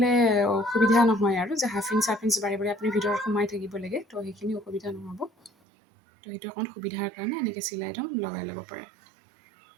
অসুবিধা নহয় আৰু যে 1/2 ইঞ্চ বাৰে বাৰে আপুনি ভিতৰত সোমাই থাকিব লাগে, তো সেইখিনি অসুবিধা নহ'ব। তো সেইটো অকণ সুবিধাৰ কাৰণে এনেকৈ চিলাইটো লগাই ল'ব পাৰে।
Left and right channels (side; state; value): left; drops out; at 5.5 s